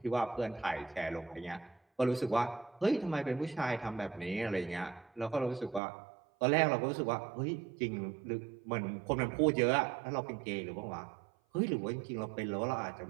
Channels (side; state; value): left; drops out; at 5.8 s